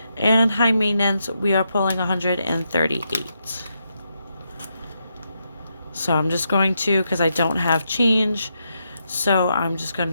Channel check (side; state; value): both; inverted; correlation -0.82